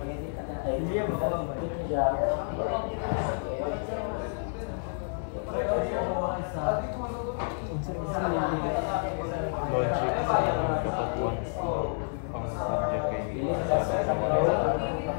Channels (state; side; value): silent; right; digital silence